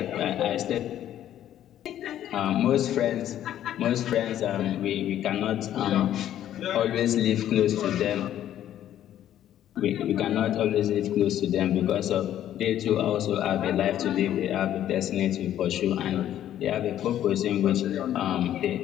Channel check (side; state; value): right; quieter; 11.5 dB